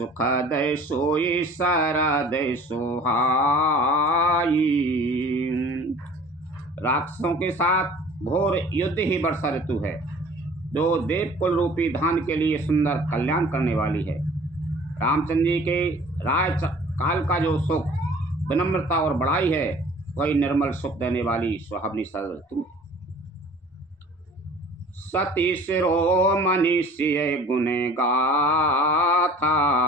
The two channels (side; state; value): both; normal; correlation 0.48